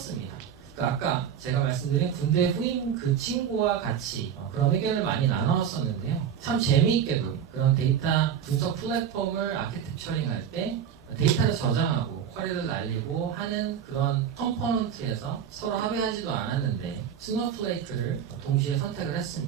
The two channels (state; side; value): quieter; left; 8.6 dB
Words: 아까 제가 말씀드린 군대 후임 그 친구와 같이 그런 의견을 많이 나눴었는데요. 참 재미있게도 그런 데이터 분석 플랫폼을 아키텍처링 할 때 데이터를 저장하고 쿼리를 날리고 하는 그런 컴포넌트에서 서로 합의하지도 않았는데 스노플레이크를 동시에 선택을